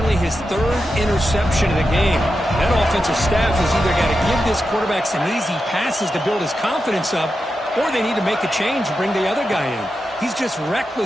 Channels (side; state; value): both; normal; correlation 0.89